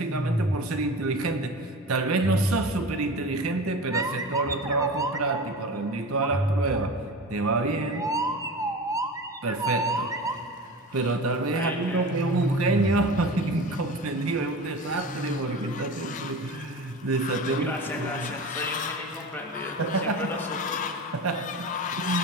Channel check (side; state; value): both; normal; correlation 0.32